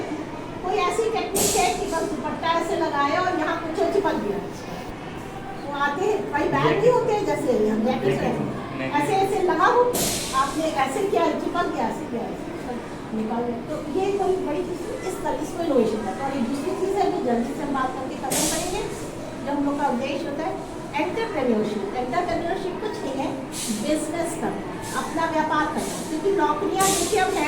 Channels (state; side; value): identical; both; correlation 1.00